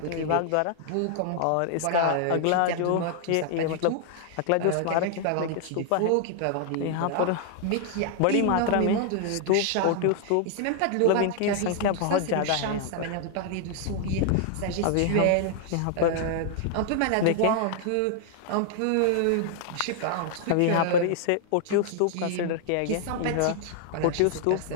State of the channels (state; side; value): different; both; correlation 0.00